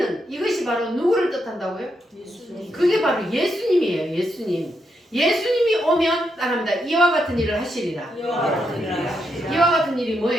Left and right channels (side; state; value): both; normal; correlation 0.81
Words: 이것이 바로 누구를 뜻한다고요? 예수님. 그게 바로 예수님이에요. 예수님. 예수님이 오면 따릅니다. 이와 같은 일을 하시리라. 이와 같은 일이